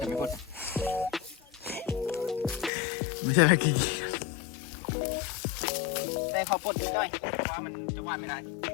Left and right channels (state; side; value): drops out; right; at 2.7 s